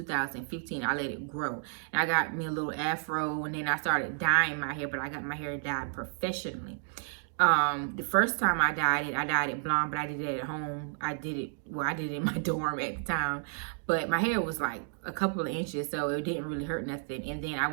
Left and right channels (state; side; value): silent; left; digital silence